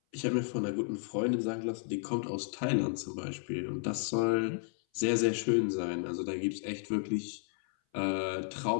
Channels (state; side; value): silent; right; 56 dB below the other